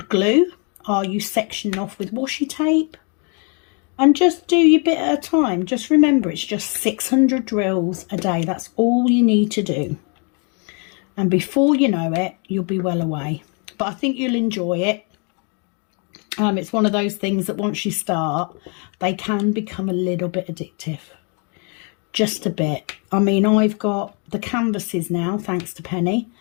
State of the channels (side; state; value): right; quieter; 36.7 dB